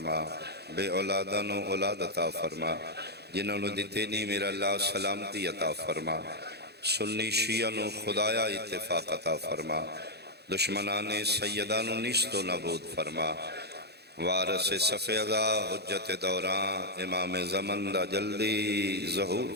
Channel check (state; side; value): late; left; 0.48 ms